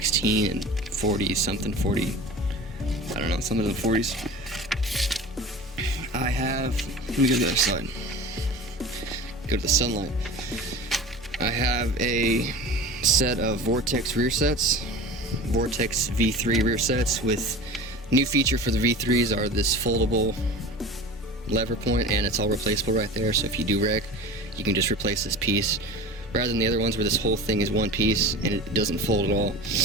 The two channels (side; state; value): both; normal; correlation 0.36